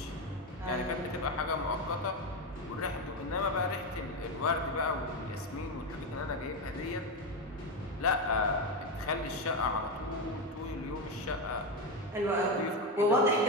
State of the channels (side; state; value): both; normal; correlation 0.13